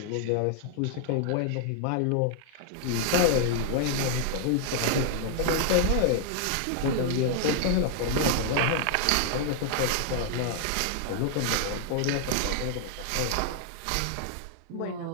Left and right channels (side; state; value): both; different; correlation 0.00